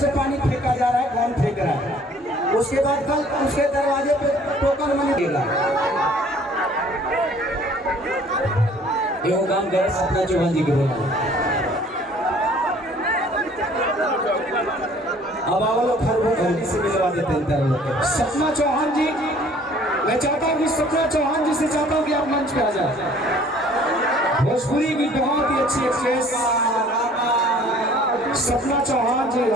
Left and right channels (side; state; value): both; normal; correlation 0.54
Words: से पानी फेंका जा रहा है कौन फेंक रहा है। उसके बाद कल उसके दरवाजे पे टोकन मनी देगा। ये काम करे सपना चौहान जी के बोला अब आवलो खरगोश से मिलवा देते हैं सपना चौहान जी। मैं चाहता हूँ कि सपना चौहान जी से चाहता हूँ कि आप मंच पे आ जाए। भोजपुरी की बहुत ही अच्छी एक्ट्रेस सपना चौहान जी